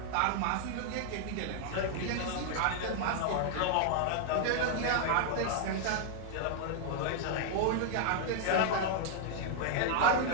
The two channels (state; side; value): different; both; correlation 0.00